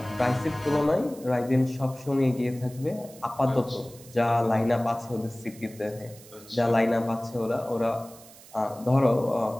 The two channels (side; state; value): right; noise; hiss, 21 dB below the sound